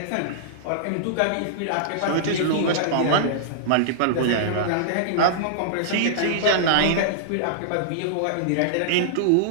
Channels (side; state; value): both; different; correlation -0.02